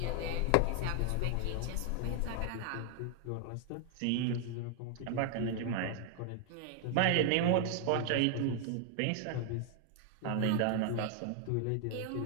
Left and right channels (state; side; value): different; both; correlation 0.00